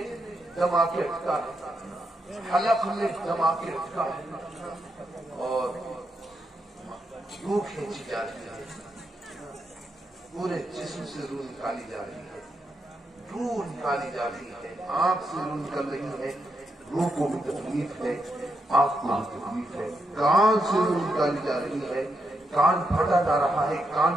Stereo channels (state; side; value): normal; both; correlation 0.82